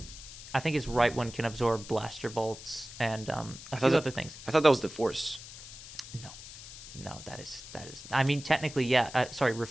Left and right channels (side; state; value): left; noise; hiss, 14 dB below the sound